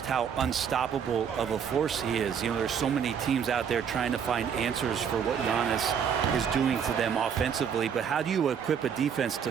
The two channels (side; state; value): left; quieter; 7.5 dB